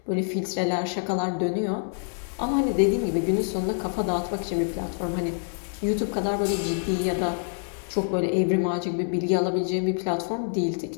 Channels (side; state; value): right; silent; digital silence